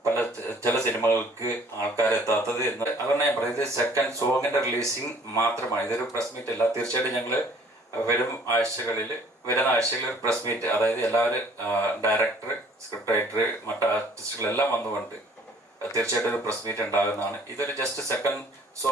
ചില സിനിമകൾക്ക് ആൾക്കാരെത്താത്തത് എന്ന്. അതുകൊണ്ട് ഞാൻ പറയുന്നത് സെക്കൻഡ് സോങ്ങിന്റെ റിലീസിങ് മാത്രമാണ്, ഇതൊരു പ്രസ് മീറ്റ് അല്ല. തീർച്ചയായിട്ടും ഞങ്ങൾ വരുന്ന ആഴ്ചകളിൽ ഒരു പ്രസ് മീറ്റ്, അതായത് എല്ലാവരും ഡയറക്ടർ, സ്ക്രിപ്റ്റ് റൈറ്റർ, മറ്റ് ആർട്ടിസ്റ്റുകളെല്ലാം വന്നുകൊണ്ട് തീർച്ചയായിട്ടും ഒരു പ്രസ് മീറ്റ് ഉണ്ടാകുന്നതാണ്. ഇതൊരു ജസ്റ്റ് സെക്കൻഡ്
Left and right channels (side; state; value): both; normal; correlation 0.56